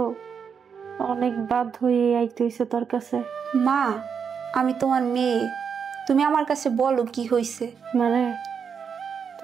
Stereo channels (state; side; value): quieter; left; 6.6 dB